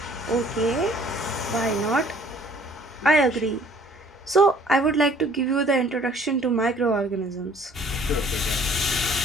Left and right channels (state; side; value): normal; both; correlation 0.56